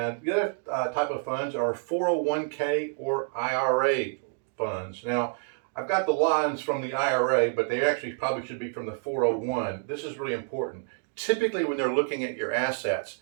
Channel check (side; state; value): left; silent; 59 dB below the other